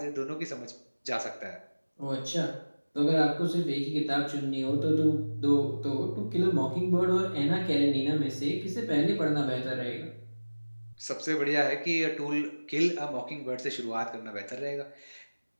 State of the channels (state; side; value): inverted; both; correlation -1.00